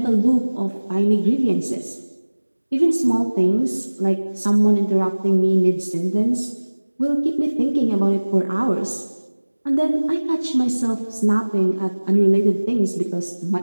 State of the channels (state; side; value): inverted; both; correlation -1.00